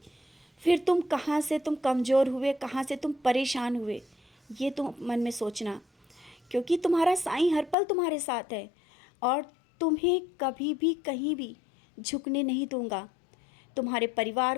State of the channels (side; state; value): right; drops out; at 7.8 s